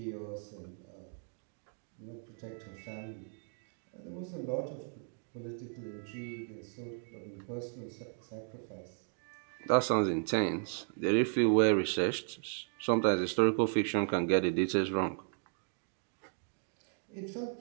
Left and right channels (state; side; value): silent; left; 54 dB below the other